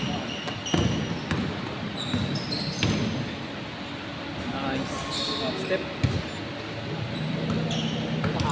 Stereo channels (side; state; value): both; identical; correlation 1.00